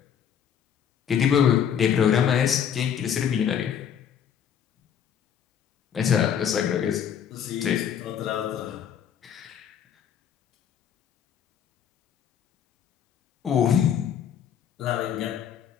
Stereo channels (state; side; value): quieter; right; 8.6 dB